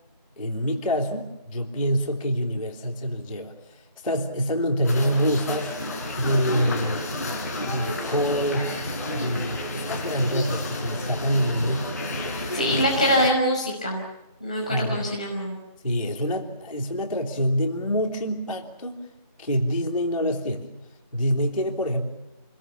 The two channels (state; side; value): inverted; both; correlation -0.57